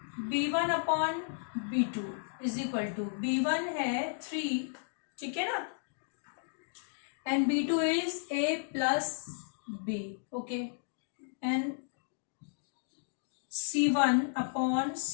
b1 upon b2 is equal to b1 है 3, ठीक है ना, and b2 is a plus b। Okay, and c1 upon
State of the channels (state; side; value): silent; right; digital silence